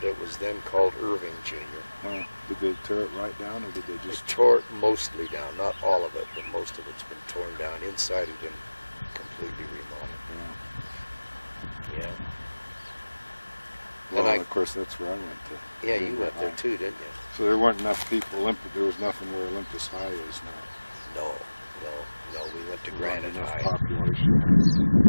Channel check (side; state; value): both; inverted; correlation -1.00